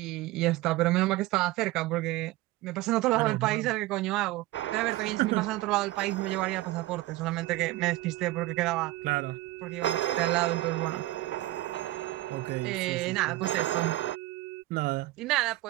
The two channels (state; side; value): quieter; left; 17.6 dB